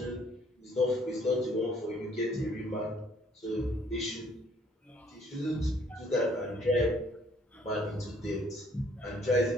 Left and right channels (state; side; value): normal; both; correlation 0.62